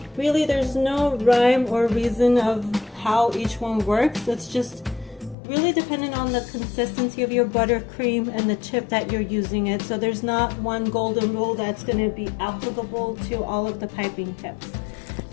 really there's no rhyme or reason of how each one works. It's just really dependent on the consistency of your buttercream and the chip that you're using it. So there's not one golden rule that's going to be applicable to all of the piping tips.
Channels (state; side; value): drops out; right; at 5.4 s